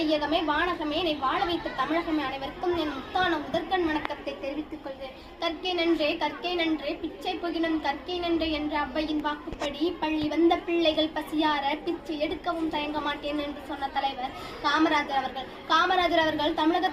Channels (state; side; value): identical; both; correlation 1.00